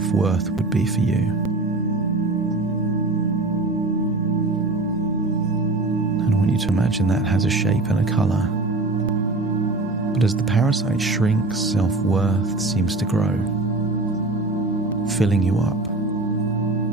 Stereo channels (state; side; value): quieter; left; 3.0 dB